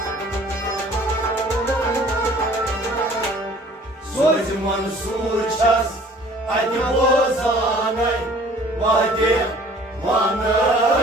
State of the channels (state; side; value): normal; both; correlation 0.52